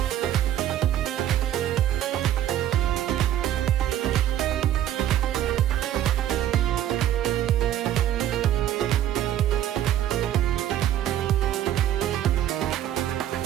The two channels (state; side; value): quieter; left; 11.6 dB